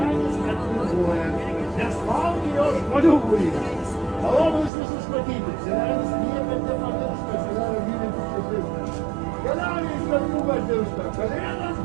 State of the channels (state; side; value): drops out; left; at 4.7 s